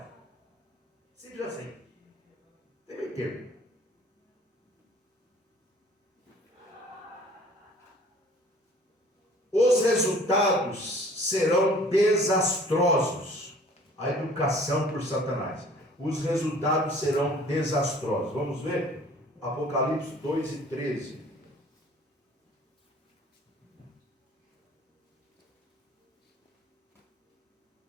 Simples assim. Tem meio termo. Os resultados serão desastrosos. A educação por Satanás. Os resultados serão desastrosos. Vamos ver? Apocalipse 2:13.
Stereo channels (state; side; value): normal; both; correlation 0.52